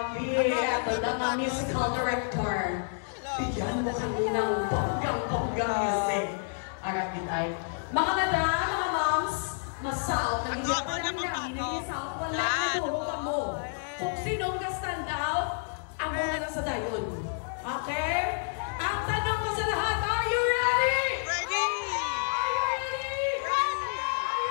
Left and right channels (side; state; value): right; silent; digital silence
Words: Ito na musical director. Bigyan mo kayo ng bonggang music. Harap nitay. Mga madam, mga moms, masaot. Ato, mo niya pampato. Wala na mo. Kung sinong ka-stand out, ang muna lang sa dayon. Okay? Ang tanong ko sa lahat, are you ready? Ready! Are you ready? Ready! Are